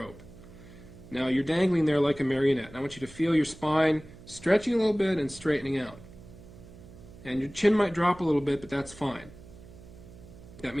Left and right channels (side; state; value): right; noise; hum, 19 dB below the sound